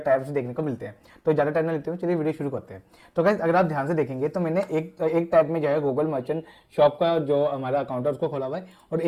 देखने को मिलते हैं। तो ज़्यादा टाइम ना लेते हुए चलिए वीडियो शुरू करते हैं। तो गाइस, अगर आप ध्यान से देखेंगे तो मैंने एक टैब में जो है गूगल मर्चेंट शॉप का जो हमारा अकाउंट है उसको खोला हुआ है और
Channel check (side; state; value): both; identical; correlation 1.00